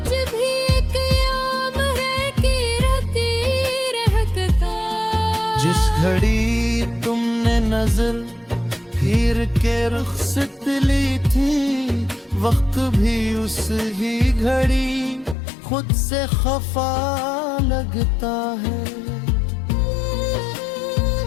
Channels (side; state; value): right; drops out; at 15.4 s